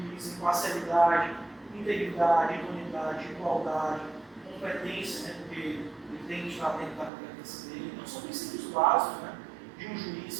imparcialidade, integridade, idoneidade, igualdade, competência, né, porque ele tem que estar dentro da competência dele. Então são princípios básicos, né, de um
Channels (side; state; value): left; drops out; at 7.1 s